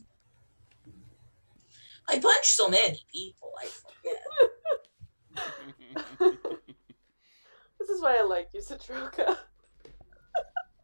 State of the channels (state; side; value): inverted; both; correlation -1.00